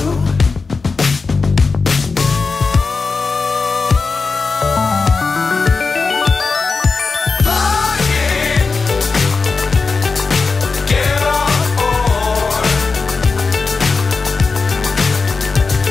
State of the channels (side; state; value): right; quieter; 4.4 dB